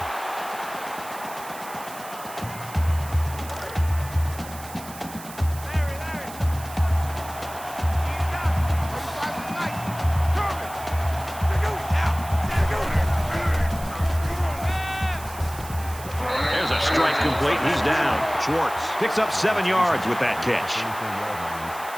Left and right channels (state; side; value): noise; right; hiss, 15 dB below the sound